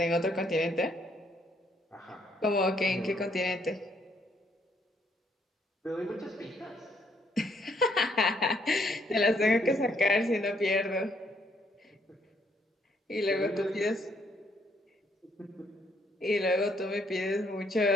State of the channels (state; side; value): normal; both; correlation 0.70